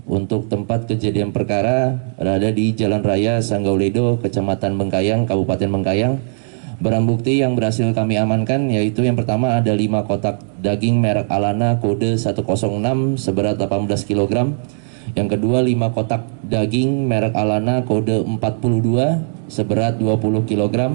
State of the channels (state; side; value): silent; left; 59 dB below the other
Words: untuk tempat kejadian perkara berada di Jalan Raya Sanggauledo, Kecamatan Bengkayang, Kabupaten Bengkayang. Barang bukti yang berhasil kami amankan yaitu yang pertama ada 5 kotak daging merek Alana kode 106 seberat 18 kg. Yang kedua 5 kotak daging merek Alana kode 42 seberat 20 kg.